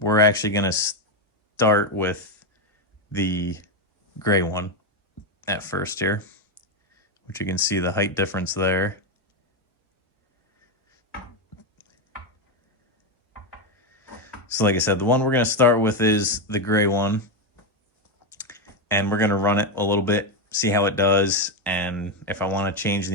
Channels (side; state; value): both; normal; correlation 0.07